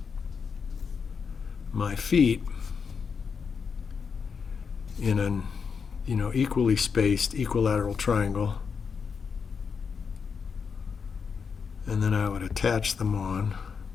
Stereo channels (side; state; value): right; quieter; 5.9 dB